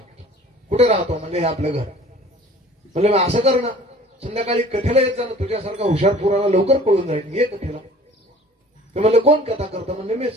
कुठे राहतो. म्हणजे हे आपलं घर. म्हणजे मग असं कर ना, संध्याकाळी कथेला येत जा ना, तुझ्यासारखा हुशार पोराला लवकर कळून जाईल, ये कथेला. ते म्हणले कोण कथा करतं. म्हणजे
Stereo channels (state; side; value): normal; both; correlation 0.49